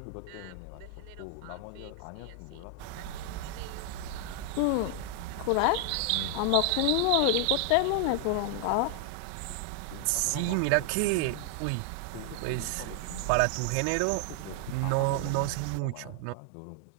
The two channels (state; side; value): different; both; correlation 0.00